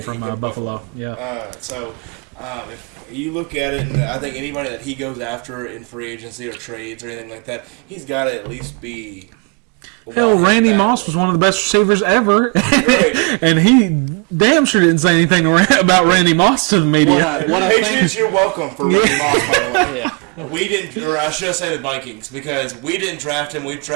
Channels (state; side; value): quieter; left; 33.2 dB